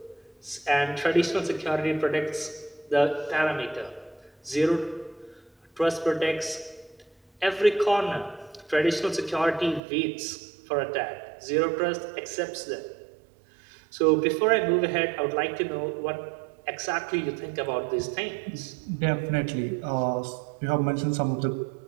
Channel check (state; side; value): drops out; left; at 9.8 s